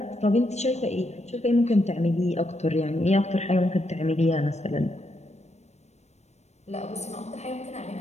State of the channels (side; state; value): right; late; 0.32 ms